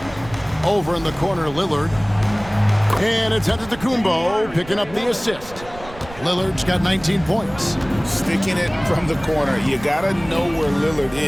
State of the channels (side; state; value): right; noise; rumble, 18 dB below the sound